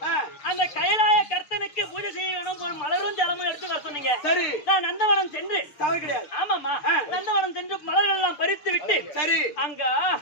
அந்த கைலாய கர்த்தனுக்கு பூஜை செய்ய வேணும் ஒரு மலரும் ஜலமும் எடுத்து வர சொன்னீங்க. சரி நான் நந்தவனம் சென்று தவறு கிடையாது. ஆமாமா நந்தவனம் சென்று மலர்கள் எல்லாம் பறித்து விட்டு சரி அங்க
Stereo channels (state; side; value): late; right; 6.8 ms